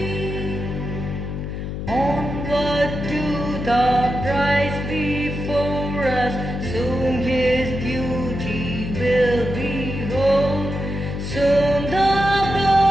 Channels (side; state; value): left; noise; hum, 5 dB below the sound